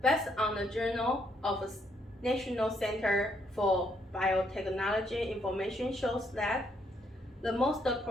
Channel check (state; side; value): normal; both; correlation 0.72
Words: Based on the Journal of the National Center for Biotechnology information shows that the most